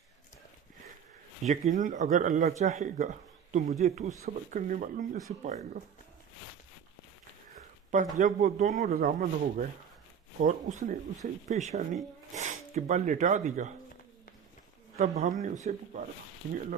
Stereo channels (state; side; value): quieter; left; 7.7 dB